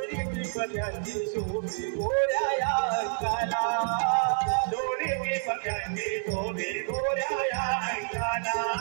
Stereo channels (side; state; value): left; silent; 59 dB below the other